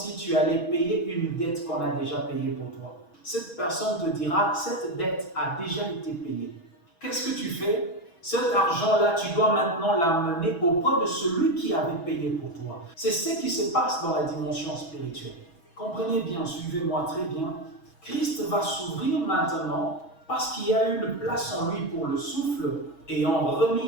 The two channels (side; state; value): right; late; 6.2 ms